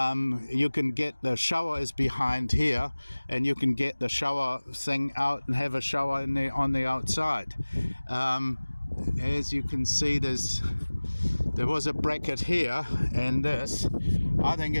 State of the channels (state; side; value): inverted; both; correlation -1.00